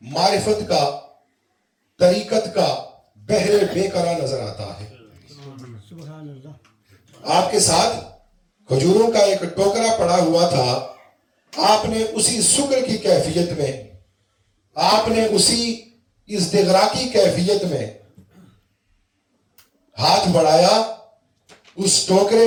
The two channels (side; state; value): both; identical; correlation 1.00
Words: معرفت کا، طریقت کا بحر بے قرار نظر آتا ہے۔ آپ کے ساتھ کھجوروں کا ایک ٹوکرا پڑا ہوا تھا، آپ نے اسی شکر کی کیفیت میں، آپ نے اسی ازدغرا کی کیفیت میں ہاتھ بڑھایا، اس ٹوکرے